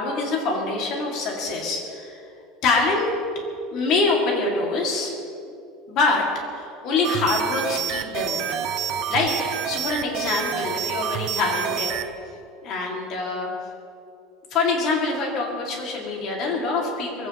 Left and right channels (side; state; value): both; normal; correlation 0.32